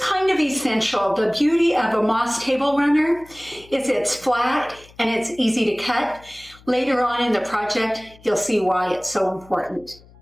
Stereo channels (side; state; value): left; noise; hum, 25 dB below the sound